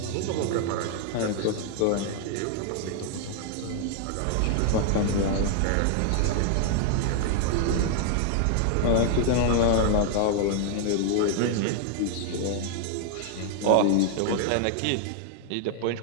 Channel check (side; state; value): both; different; correlation 0.00